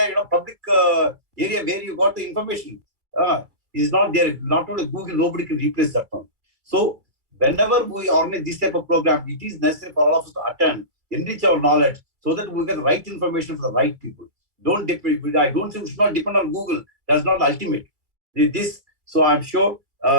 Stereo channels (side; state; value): left; late; 2.3 ms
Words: public area where you got the information? Is not there. Not only Google, nobody can replace that one. So whenever we organize this type of program, it is necessary for all of us to attend, enrich our knowledge, so that we get the right information for the right people. Don't depend. I don't say we should not depend on Google. That's not ultimate. So I'm sure